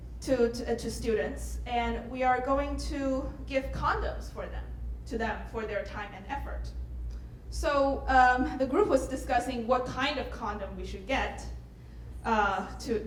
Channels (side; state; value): both; identical; correlation 1.00